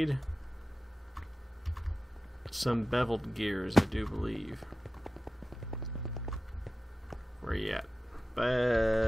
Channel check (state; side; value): normal; both; correlation 0.95